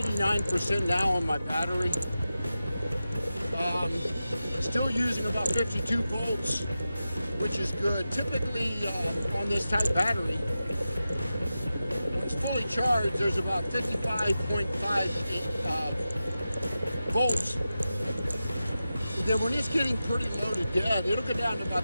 now on my battery. Still using about 52 volts, which is good. Typically on this type battery, when it's fully charged, there's about 55.5 volts. And then when it's getting pretty low to dead, it'll go down to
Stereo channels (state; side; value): inverted; both; correlation -0.93